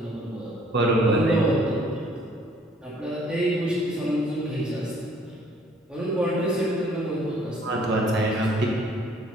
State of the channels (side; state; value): both; normal; correlation 0.59